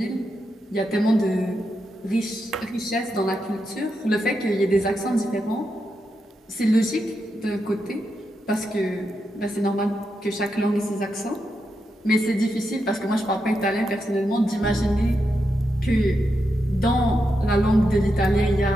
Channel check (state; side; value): normal; both; correlation 0.85